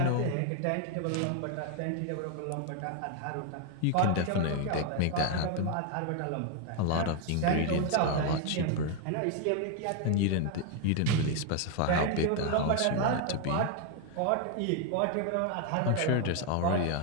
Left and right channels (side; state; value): both; different; correlation 0.01